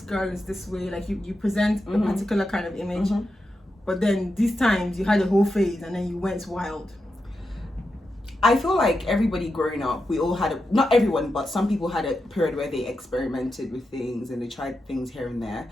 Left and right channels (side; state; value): both; normal; correlation 0.88